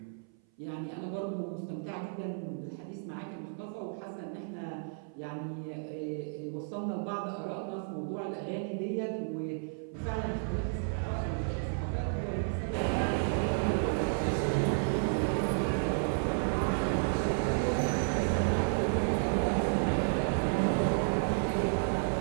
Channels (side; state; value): left; silent; 56 dB below the other